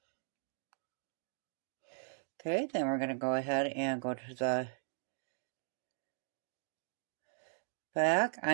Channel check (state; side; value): silent; left; digital silence